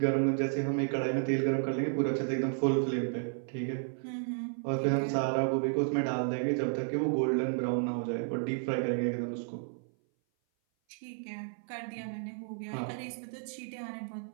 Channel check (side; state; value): left; silent; 56 dB below the other